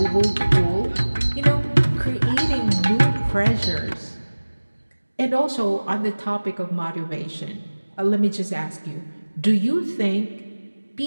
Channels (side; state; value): both; inverted; correlation -1.00